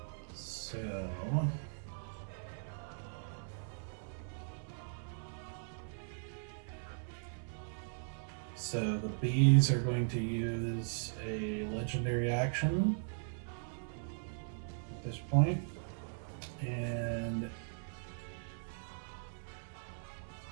So the bees are going to use a legendary action at this point, and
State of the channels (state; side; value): silent; left; 52 dB below the other